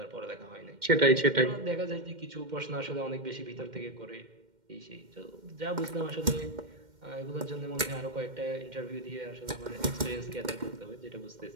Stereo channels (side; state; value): left; late; 2.1 ms